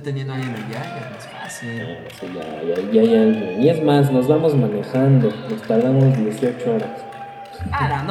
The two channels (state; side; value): identical; both; correlation 1.00